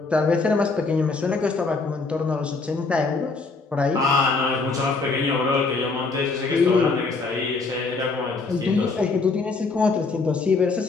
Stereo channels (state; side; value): quieter; right; 4.0 dB